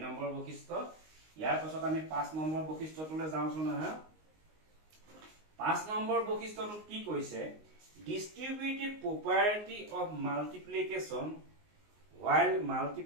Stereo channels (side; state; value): left; late; 19 ms